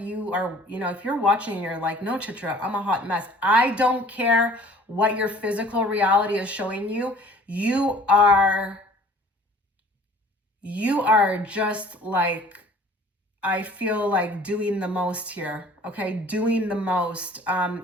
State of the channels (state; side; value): normal; both; correlation 0.51